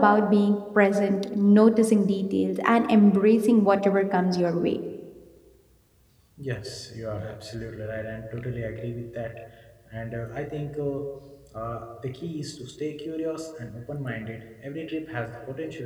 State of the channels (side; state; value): both; identical; correlation 1.00